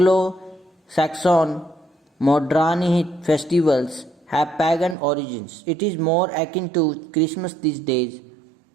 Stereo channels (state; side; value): drops out; left; at 5.0 s